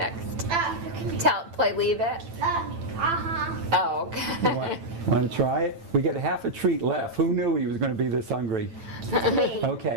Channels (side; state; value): left; late; 9.0 ms